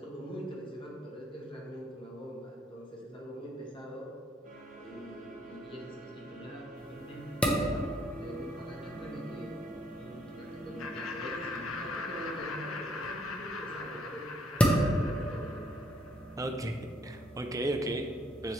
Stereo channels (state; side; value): normal; both; correlation 0.68